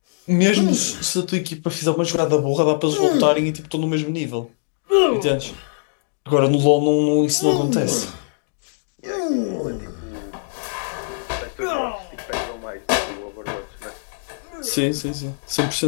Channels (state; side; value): silent; right; digital silence